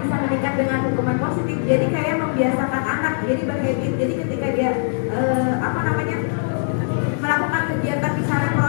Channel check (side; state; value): right; silent; digital silence